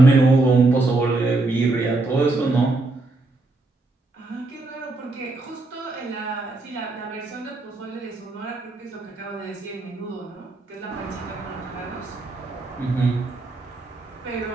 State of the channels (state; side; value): quieter; left; 3.1 dB